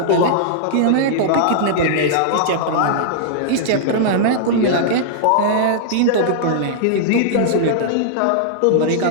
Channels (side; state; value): both; different; correlation -0.02